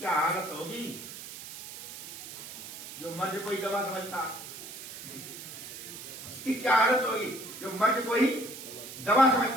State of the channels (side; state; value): right; noise; hiss, 11 dB below the sound